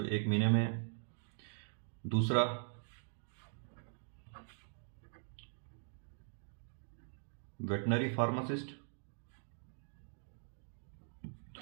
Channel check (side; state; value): left; silent; digital silence